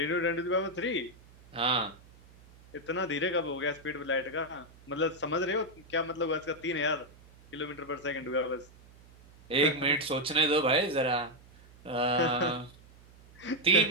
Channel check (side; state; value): right; noise; hum, 24 dB below the sound